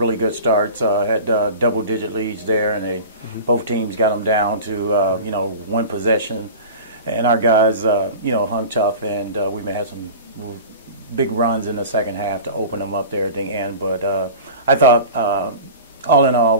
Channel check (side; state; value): both; inverted; correlation -0.37